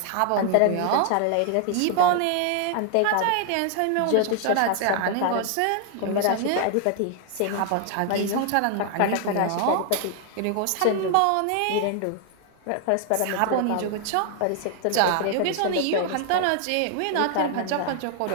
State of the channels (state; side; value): different; both; correlation 0.00